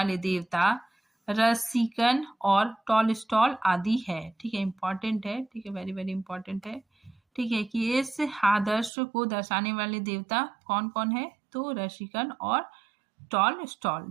देवता रसिकन और टॉलस्टॉय आदि है, ठीक है। इंपॉर्टेंट है, ठीक है, वेरी वेरी इंपॉर्टेंट है, ठीक है, कि इस आदर्श को दर्शाने वाले देवता कौन कौन है, तो रसिकन और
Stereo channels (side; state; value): left; drops out; at 8.9 s